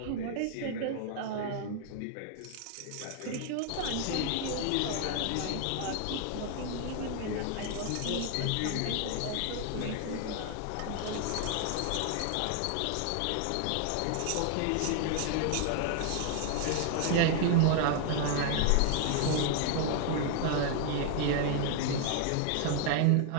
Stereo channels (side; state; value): both; different; correlation 0.00